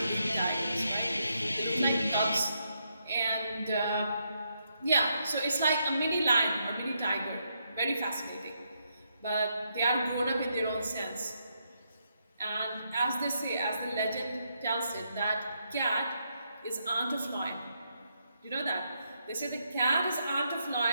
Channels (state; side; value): inverted; both; correlation -0.79